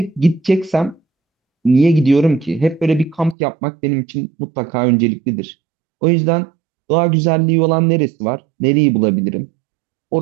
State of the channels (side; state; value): left; drops out; at 3.4 s